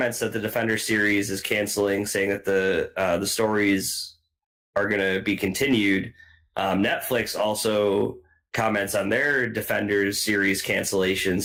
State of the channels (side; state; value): both; identical; correlation 1.00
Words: that the Defender series is canceling, saying that the stories are going to be continued. Netflix also comments on their Defenders series cancellation,